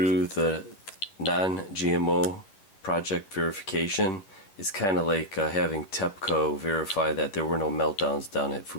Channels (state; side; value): late; right; 10 ms